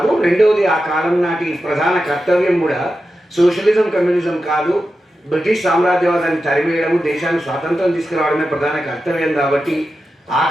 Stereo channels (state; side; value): normal; both; correlation 0.91